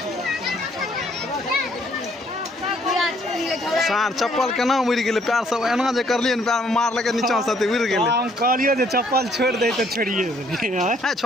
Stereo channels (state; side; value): normal; both; correlation 0.65